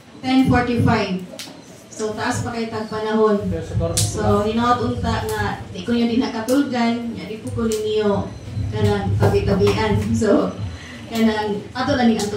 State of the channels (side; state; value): both; identical; correlation 1.00